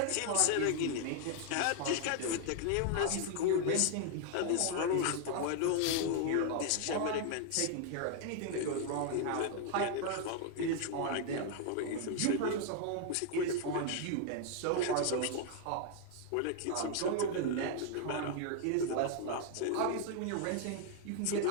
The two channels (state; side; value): different; both; correlation 0.00